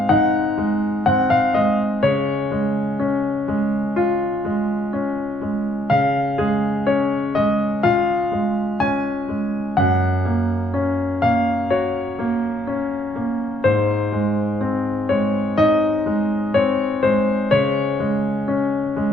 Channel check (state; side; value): noise; right; rumble, 20 dB below the sound